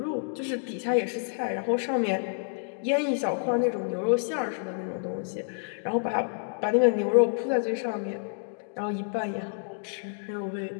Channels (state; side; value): silent; right; digital silence